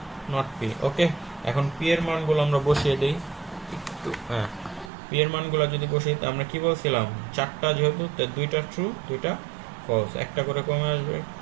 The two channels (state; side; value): drops out; left; at 4.9 s